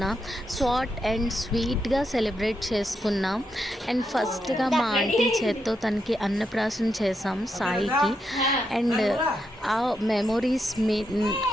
షార్ట్ అండ్ స్వీట్గా సెలబ్రేట్ చేసుకున్నాం. అండ్ ఫస్ట్గా మా ఆంటీ చేత్తో తనకి అన్నప్రాసన చేసాం సాయికి. అండ్ ఆ మెమొరీస్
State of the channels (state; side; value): normal; both; correlation 0.83